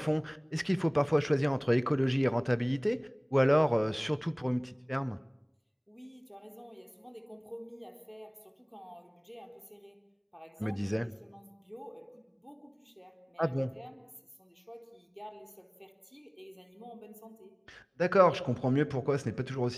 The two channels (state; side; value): identical; both; correlation 1.00